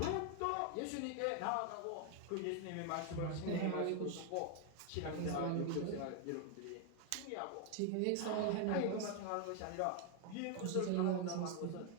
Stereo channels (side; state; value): both; different; correlation 0.00